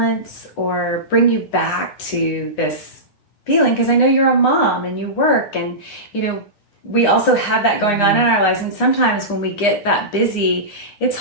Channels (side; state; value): right; late; 9.8 ms